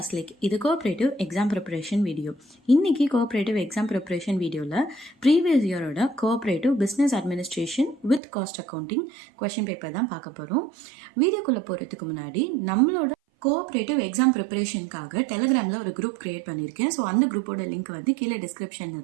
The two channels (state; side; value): drops out; left; at 8.2 s